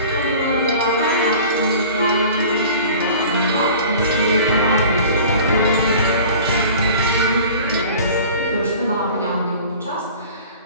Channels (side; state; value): both; inverted; correlation -0.43